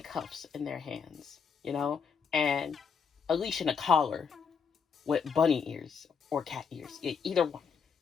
in their hands, and a leash and a collar with bunny ears or cat ears, either one.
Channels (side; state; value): right; quieter; 6.2 dB